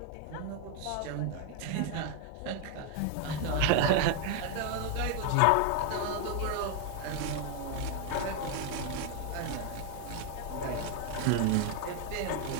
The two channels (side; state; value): both; different; correlation 0.01